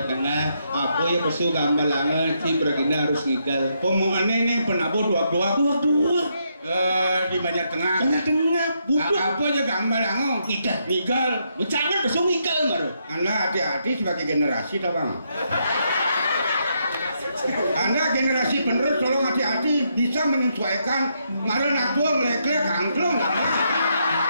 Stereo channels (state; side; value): inverted; both; correlation -0.78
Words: Tengah apa ya pesu gambar langan si beragina harus ngigal omongannya nih penabu dua di Banjar Tengah butuh apa aja gambar langan ngigal bercanda pesu ngigal baru anda hati-hati sebagai generasi tau bang anda generasi penerus tolong hati-hati bisa menyesuaikan malah nak tua melek-lek angklung